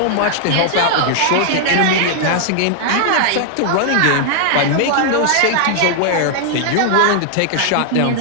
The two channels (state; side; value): different; both; correlation 0.00